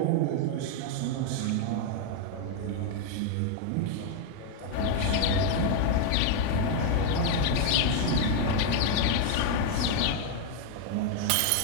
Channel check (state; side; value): different; both; correlation 0.00